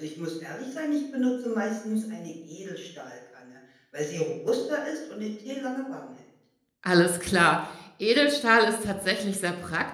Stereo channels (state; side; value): identical; both; correlation 1.00